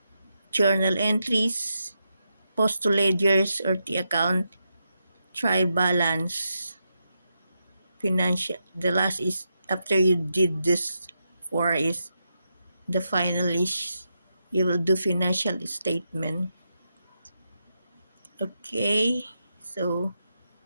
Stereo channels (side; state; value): both; inverted; correlation -0.85